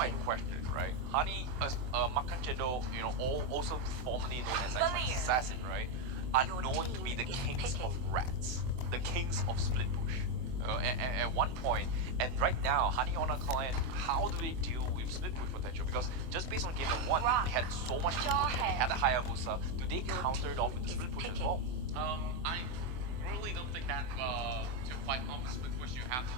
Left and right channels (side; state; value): left; late; 24 ms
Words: picking. question, right? Honey, Makan Cendol, also formerly known as like Assassin, right? Are Your known to be team the is kings of picking. rats, the kings of split push. At one point, and right now, Honey on a client, how do they deal with split push potential? Because just based on game 1, they had so much split push, and they had a Hayabusa. Do they Your counter it off with the team split is push as picking. well? I really don't think that to fight off the split push, you have to